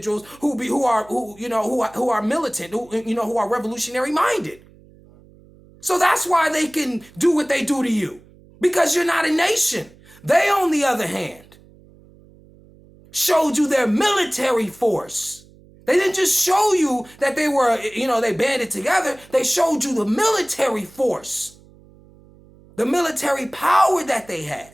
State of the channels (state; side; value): noise; right; hum, 26 dB below the sound